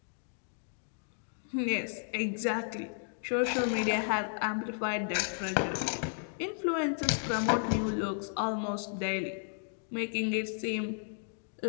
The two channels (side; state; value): right; silent; digital silence